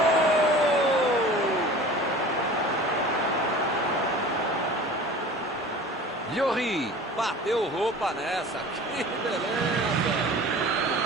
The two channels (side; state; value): both; normal; correlation 0.40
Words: Lloris bateu roupa nessa. Que beleza!